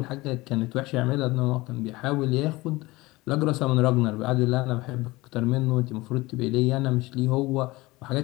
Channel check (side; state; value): right; quieter; 20.9 dB